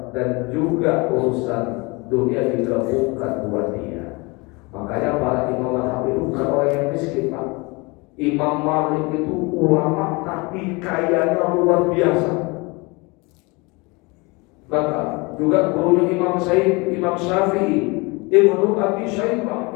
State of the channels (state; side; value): quieter; right; 26.9 dB